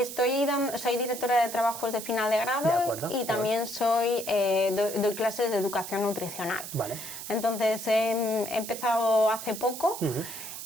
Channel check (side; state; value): right; noise; hiss, 9 dB below the sound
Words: soy directora de trabajos de final de grado. De acuerdo, y también doy clases de educación nutricional. Vale. Entonces he empezado hace poco,